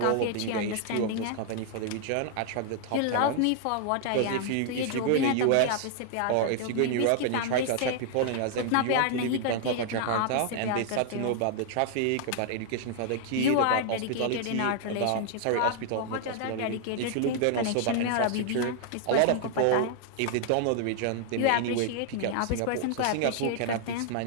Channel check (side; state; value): both; different; correlation 0.00